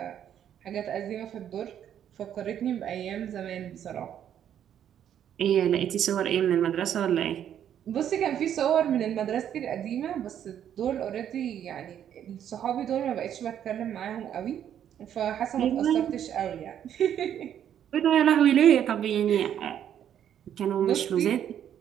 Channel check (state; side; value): quieter; left; 9.8 dB